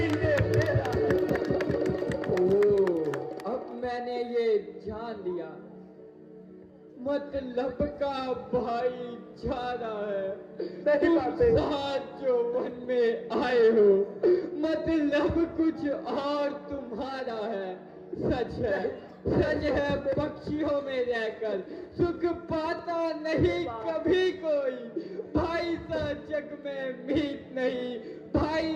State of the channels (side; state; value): both; identical; correlation 1.00